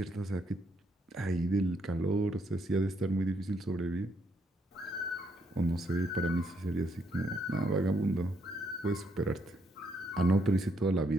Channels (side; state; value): both; normal; correlation 0.74